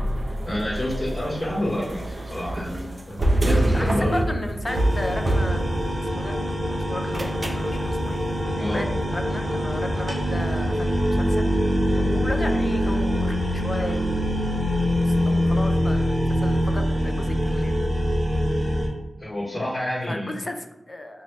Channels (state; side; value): normal; both; correlation 0.93